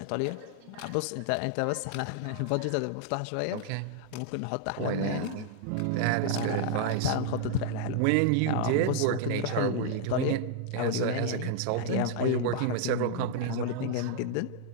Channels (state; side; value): different; both; correlation -0.01